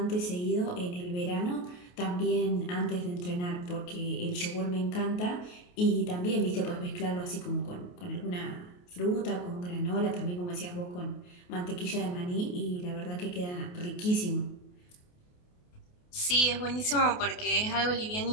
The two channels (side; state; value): right; late; 28 ms